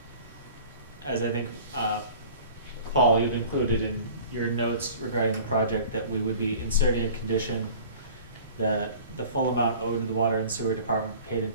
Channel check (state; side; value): inverted; both; correlation -0.44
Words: I think, Paul, you've included in your notes regarding the project that we would be inserting a condition that the full amount owed to the water and sewer department paid in